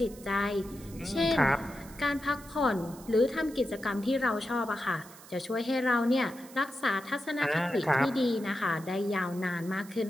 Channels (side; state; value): right; noise; hiss, 20 dB below the sound